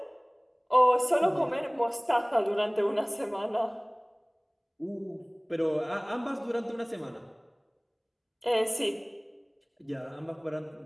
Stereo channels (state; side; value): identical; both; correlation 1.00